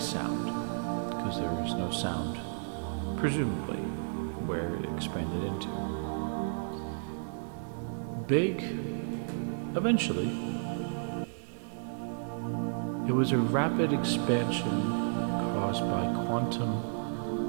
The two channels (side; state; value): left; silent; 56 dB below the other